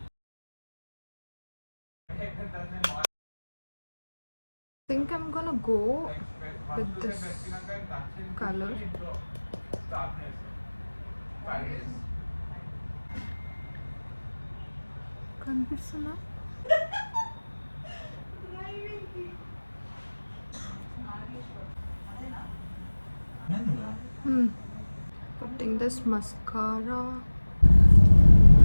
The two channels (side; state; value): both; inverted; correlation -1.00